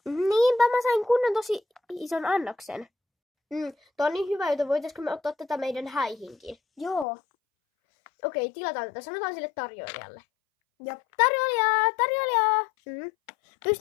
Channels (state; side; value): drops out; right; at 7.1 s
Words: Niinpä mä sain kunnon tosi ison annoksen. Tää on niin hyvä, joten voitaisko me ottaa tätä meidän häihinkin? Joo. Okei, tilataan tätä. Sanotaan sille tarjoilijalle. Ja Tarjoilija!